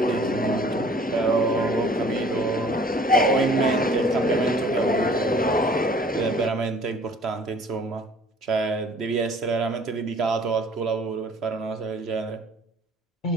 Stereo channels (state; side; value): normal; both; correlation 0.53